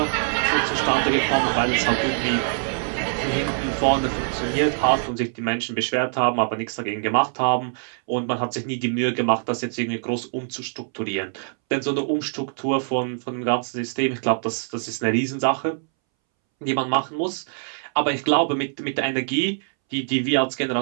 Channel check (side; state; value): left; silent; 63 dB below the other